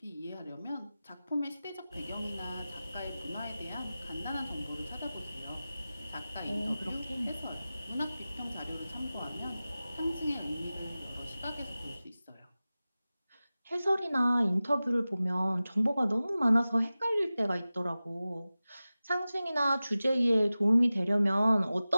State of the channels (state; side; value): inverted; both; correlation -0.96